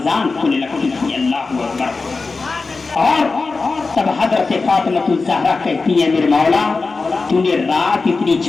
کھلنے لگتی تھی۔ اللہ اکبر۔ اور تب حضرت فاطمہ الزہرا کہتی ہے، میرے مولا تو نے رات اتنی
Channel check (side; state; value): right; quieter; 4.0 dB